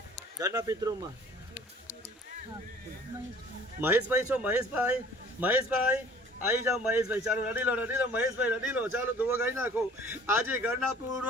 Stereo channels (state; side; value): normal; both; correlation 0.51